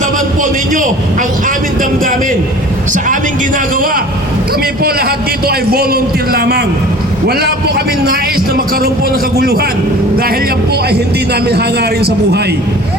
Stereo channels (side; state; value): both; normal; correlation 0.44